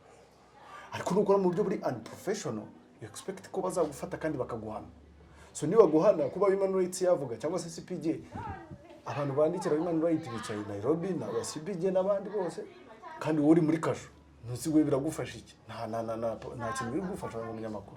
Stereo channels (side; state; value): both; identical; correlation 1.00